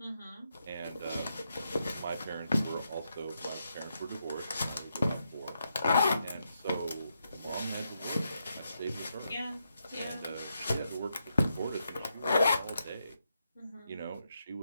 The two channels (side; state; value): both; inverted; correlation -0.82